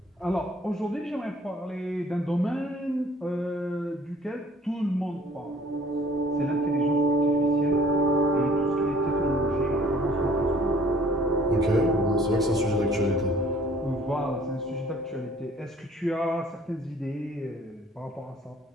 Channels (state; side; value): normal; both; correlation 0.55